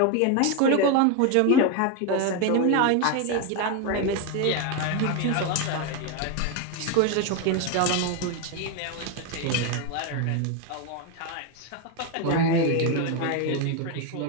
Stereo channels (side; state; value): both; different; correlation 0.02